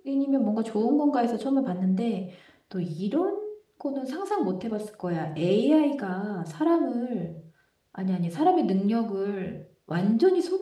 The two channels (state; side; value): identical; both; correlation 1.00